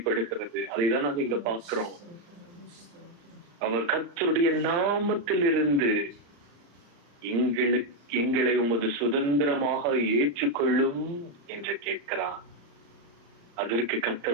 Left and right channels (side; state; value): left; late; 35 ms